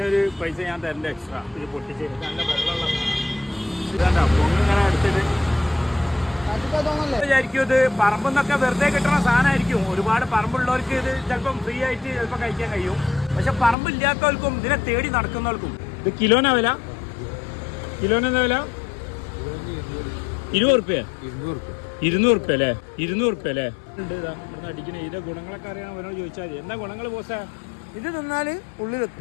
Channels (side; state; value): right; drops out; at 13.8 s